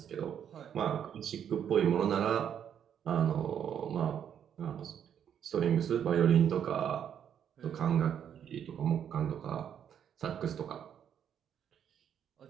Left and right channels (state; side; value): quieter; left; 8.9 dB